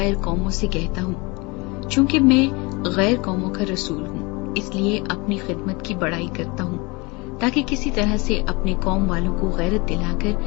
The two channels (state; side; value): quieter; right; 26.5 dB